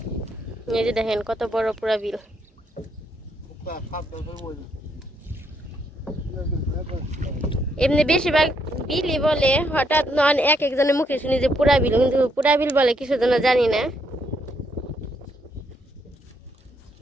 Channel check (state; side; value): normal; both; correlation 0.74